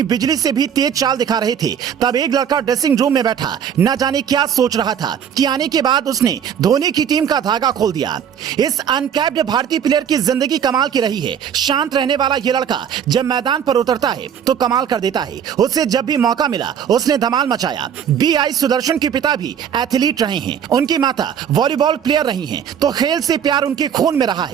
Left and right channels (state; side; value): quieter; left; 8.4 dB